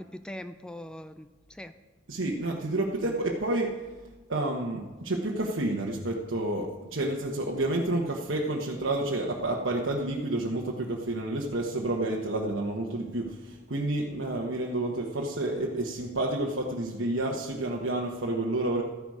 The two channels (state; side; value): normal; both; correlation 0.26